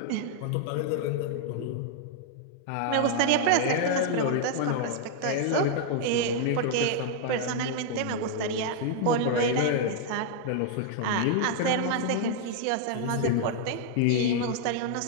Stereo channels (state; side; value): different; both; correlation -0.01